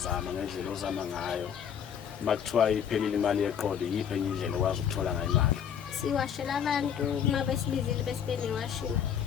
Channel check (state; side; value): quieter; right; 8.4 dB